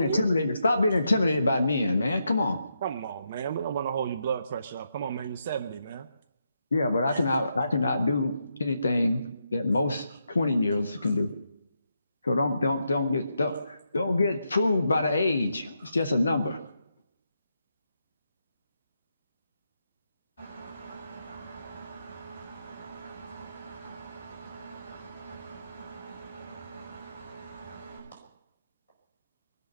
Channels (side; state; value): both; inverted; correlation -0.82